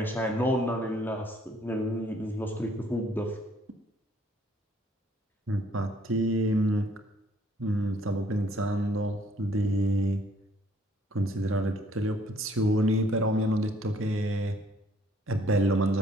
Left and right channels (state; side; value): normal; both; correlation 0.63